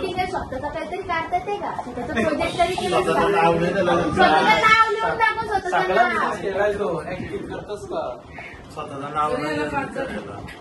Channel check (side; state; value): both; identical; correlation 1.00